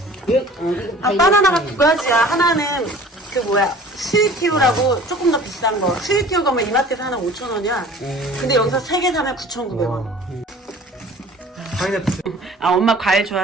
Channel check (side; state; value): both; normal; correlation 0.46